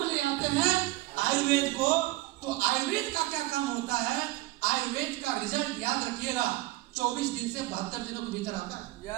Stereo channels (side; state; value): left; quieter; 18.9 dB